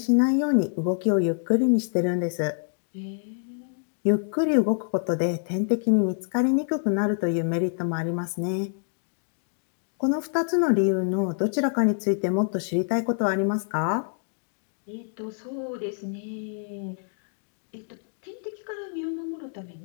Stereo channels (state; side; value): silent; right; digital silence